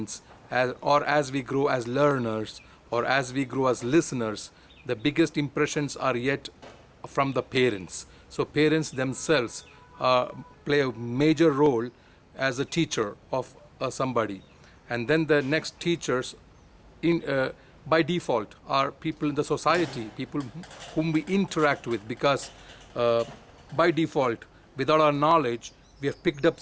or as we grow as learners, or as we grow as listeners, the biggest impressions are yet from the parents. So parents themselves play a major role as a teacher of somebody, and then the next teachers in by default are people in the society, people whom we interact with, because by default, without our knowledge, we have picked up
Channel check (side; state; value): both; identical; correlation 1.00